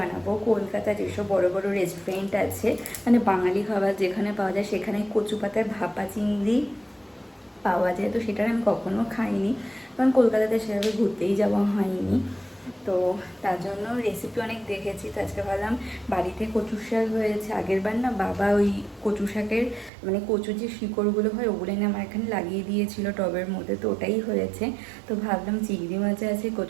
কলকাতা যেসব বড় বড় রেস্টুরেন্ট আছে, মানে বাঙালি খাবার যেখানে পাওয়া যায়, সেখানে কচু পাতার ভাপা চিংড়ি পাওয়া যায়। তো সেটা আমি কখনো খাইনি, কারণ কলকাতাতে সেভাবে ঘুরতেই যাওয়া হয়নি। তো তার জন্য রেসিপি অনেক দেখেছি। তো আজকে ভাবলাম বাড়িতে কচুর শাক হয়েছে, আগের বার না বাবা ওই কচু শাকের মানে কচুর যে শিকড়গুলো হয় ওগুলো এনে আমার এখানে লাগিয়ে দিয়েছিল টবের মধ্যে, তো ওটাই হয়েছে। তো ভাবলাম চিংড়ি মাছ আছে,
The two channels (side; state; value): left; drops out; at 19.9 s